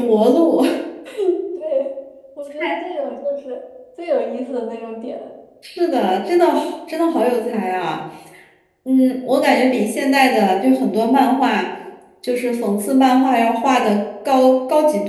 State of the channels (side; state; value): both; identical; correlation 1.00